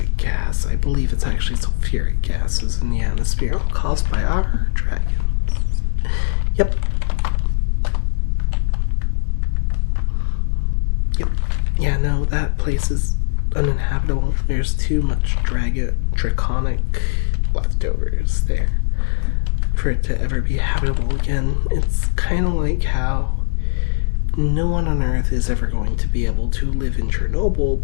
gas? I believe it's actually sulfuric gases in the atmosphere caused by our dragons. Yep. Yeah, no, that place is uninhabitable. There's too much draconic leftovers there for it to ever be habitable again. It's kind of like how no one on Earth is ever going to be able to live in Chernobyl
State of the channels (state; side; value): silent; right; 56 dB below the other